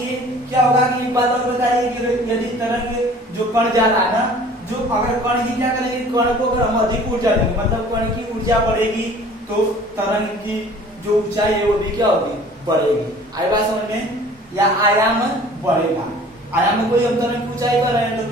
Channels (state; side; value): normal; both; correlation 0.49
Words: क्या होगा कि एक बात और बताइए कि यदि तरंग जो कण जा रहा है ना, जो अगर कण की क्या करेंगे? कण को अगर हम अधिक ऊर्जा देंगे, मतलब कण की ऊर्जा बढ़ेगी तो तरंग की जो ऊंचाई है वो भी क्या होगी? बढ़ेगी। आई बात समझ में? या आयाम बढ़ेगा। आयाम को हम तरंग की ऊंचाई कर रहे हैं तो